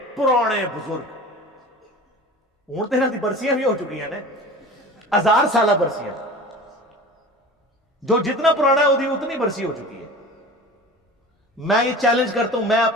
پرانے بزرگ. ہوں تیرہ دی برسیاں بھی ہو چکی ہیں نا، 1000 سالہ برسیاں. جو جتنا پرانا ہے وہ اتنی برسی ہو چکی ہے. میں یہ چیلنج کرتا ہوں، میں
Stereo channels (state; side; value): normal; both; correlation 0.38